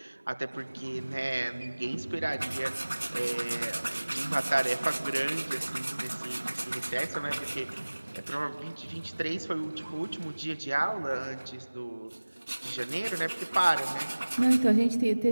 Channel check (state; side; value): inverted; both; correlation -1.00